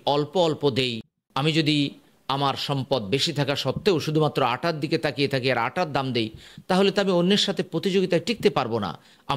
অল্প অল্প দেই, আমি যদি আমার সম্পদ বেশি থাকা সত্ত্বেও শুধুমাত্র আটার দিকে তাকিয়ে থাকি আর আটার দাম দেই, তাহলে তো আমি অন্যের সাথে প্রতিযোগিতায় টিকতে পারবো না।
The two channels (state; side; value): identical; both; correlation 1.00